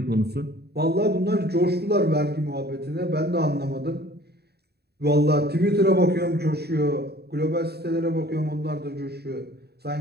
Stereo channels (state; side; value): late; left; 0.47 ms